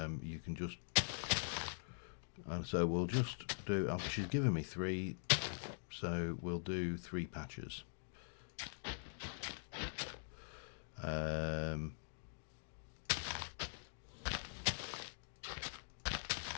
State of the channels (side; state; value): right; silent; digital silence